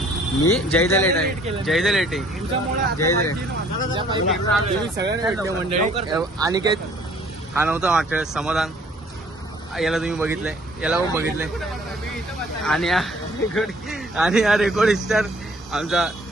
मी जयदा लेट आहे. जयदा लेट आहे. जयदा तुम्ही सगळ्यांना भेटले मंडळी. आणि काय हा नव्हता वाटत समाधान, याला तुम्ही बघितलंय, याला पण बघितलंय. आणि हा रेकॉर्ड स्टार आमचा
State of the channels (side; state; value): both; normal; correlation 0.57